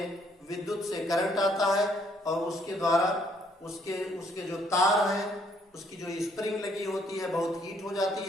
विद्युत से करंट आता है और उसके द्वारा उसके उसके जो तार हैं, उसकी जो स्प्रिंग लगी होती है बहुत हीट हो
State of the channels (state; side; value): normal; both; correlation 0.67